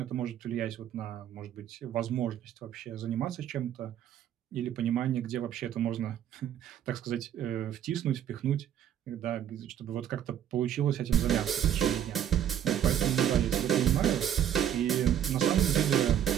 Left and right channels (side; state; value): left; quieter; 10.2 dB